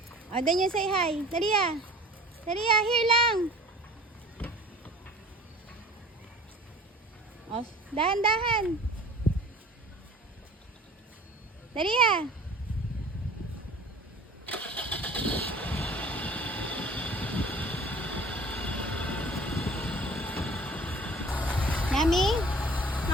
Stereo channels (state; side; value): normal; both; correlation 0.45